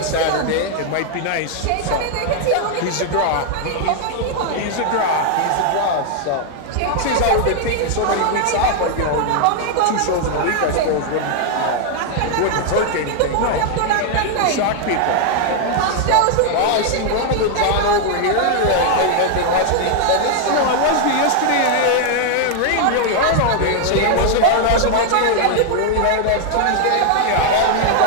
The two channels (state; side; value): different; both; correlation 0.00